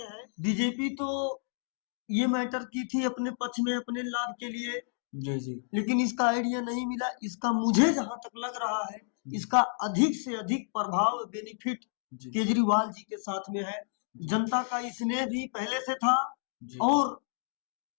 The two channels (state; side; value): silent; right; digital silence